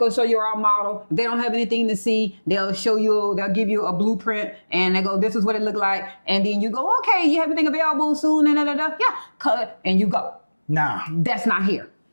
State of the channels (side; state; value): both; inverted; correlation -1.00